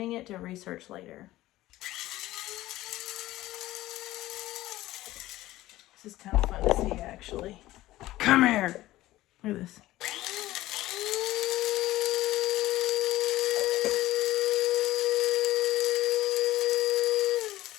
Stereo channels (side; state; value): right; quieter; 16.3 dB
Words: it to research later. This is kind of fun to see, actually. Come here. Look at this.